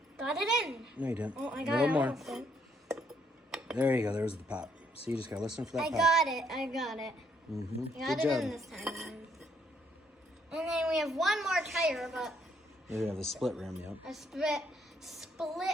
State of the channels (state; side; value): normal; both; correlation 0.70